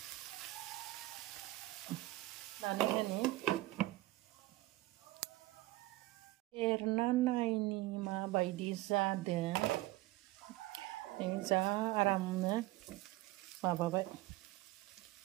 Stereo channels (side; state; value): left; quieter; 18.8 dB